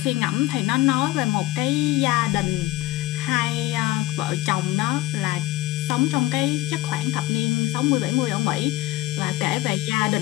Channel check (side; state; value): right; quieter; 17.2 dB